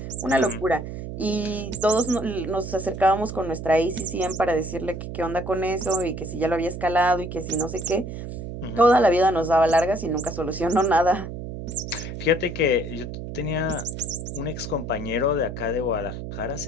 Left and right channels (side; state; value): right; noise; hum, 8 dB below the sound